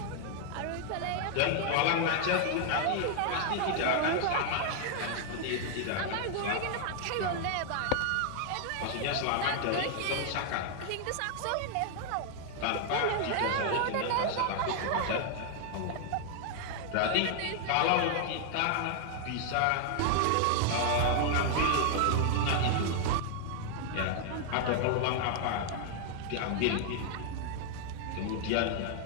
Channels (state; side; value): different; both; correlation 0.00